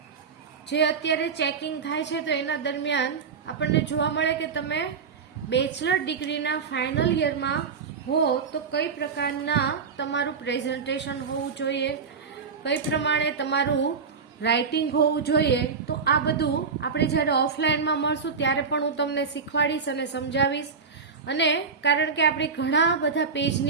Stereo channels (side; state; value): left; quieter; 5.5 dB